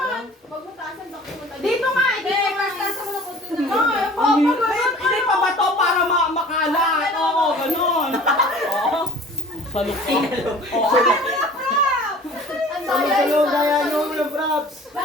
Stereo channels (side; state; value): both; normal; correlation 0.46